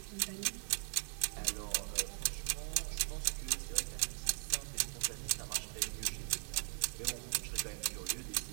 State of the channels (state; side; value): silent; left; 51 dB below the other